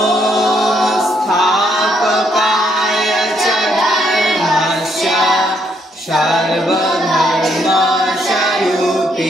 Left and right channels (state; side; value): normal; both; correlation 0.72